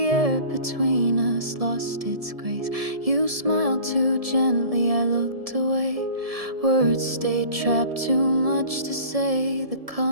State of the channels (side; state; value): left; late; 1.7 ms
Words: air between us lost its grace. You smiled too gently, I looked away. Words stayed trapped, too much to say. The